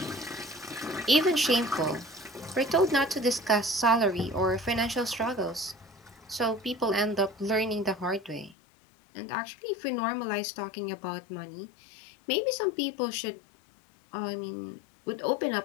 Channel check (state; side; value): drops out; right; at 8.6 s